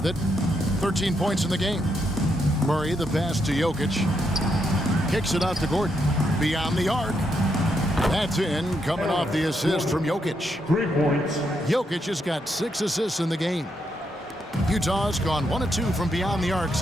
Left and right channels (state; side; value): normal; both; correlation 0.79